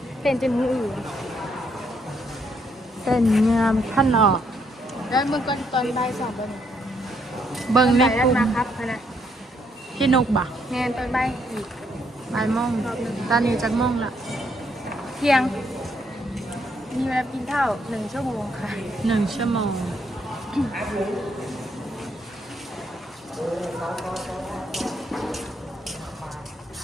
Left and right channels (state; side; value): normal; both; correlation 0.73